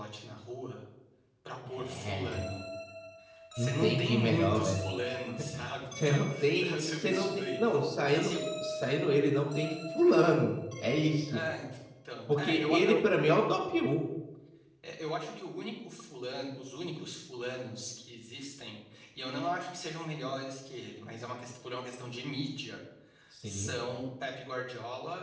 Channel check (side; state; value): both; identical; correlation 1.00